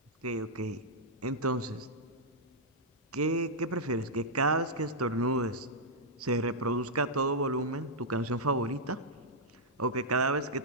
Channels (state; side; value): normal; both; correlation -0.08